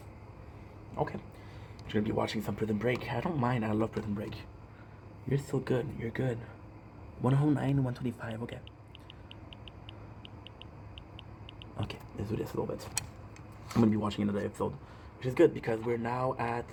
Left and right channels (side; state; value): both; identical; correlation 1.00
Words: Okay. You're gonna be watching some Prison Break. I don't mind, I love Prison Break. You're still good. You're good. 109, 125. Okay. Okay, let's do this a little bit. I'm gonna be watching another episode, which is good because we're now